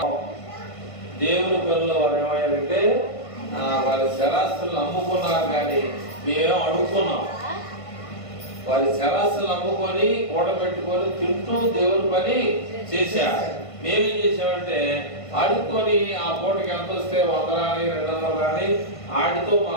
దేవుని పనులు వారు ఏమయ్యారంటే వారి శరాస్తులను అమ్ముకున్నారు, కానీ మేమేం అడుగుకున్నాం. వారి శరాస్తులు అమ్ముకొని కూడబెట్టుకొని తింటూ దేవుని పని చేశారు. మేమేం చేసామంటే ఆడుకొని ఆ పూటకి ఎంత వస్తే 100 రాని 200 రాని ఆడితో మా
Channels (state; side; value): late; right; 1.5 ms